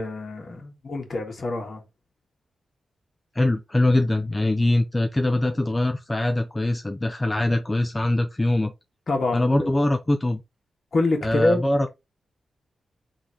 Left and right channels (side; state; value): both; normal; correlation 0.98